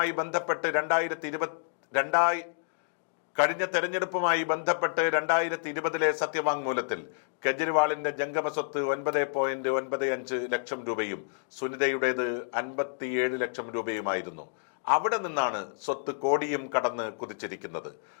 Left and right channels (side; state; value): right; silent; digital silence